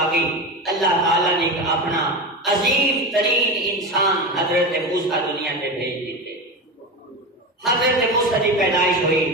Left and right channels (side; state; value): both; normal; correlation 0.22